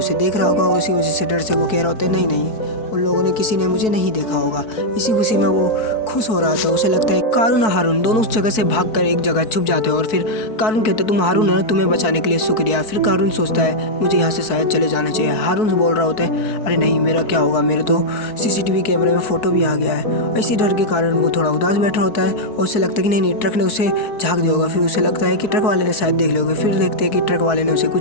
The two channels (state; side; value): late; right; 4.6 ms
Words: देख रहा होगा। उसी वजह से डर से वो कह रहा होता है नहीं, उन लोगों ने किसी ने मुझे नहीं देखा होगा। इसी खुशी में वो खुश हो रहा था। उसे लगता है कारून और हारून दोनों उस जगह से भागकर एक जगह छुप जाते हैं। और फिर कारून कहते हैं तुम हारून है, तुम्हें बचाने के लिए शुक्रिया। फिर कारून सोचता है मुझे यहाँ से शायद चले जाना चाहिए। हारून से बोल रहा होता है अरे नहीं, मेरा क्या होगा, मेरे तो CCTV कैमरे में फ़ोटो भी आ गया है। इसी डर के कारण वो थोड़ा उदास बैठा होता है और उसे लगता है कि नहीं, ट्रक ने उसे झाँक दिया होगा। फिर उसे लगता है कि ट्रक वाले ने शायद देख लिया होगा। फिर देखते हैं कि ट्रक वाले ने उसे